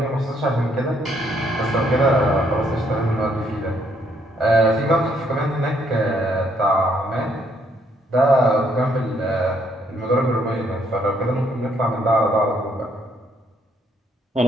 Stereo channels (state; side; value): normal; both; correlation 0.70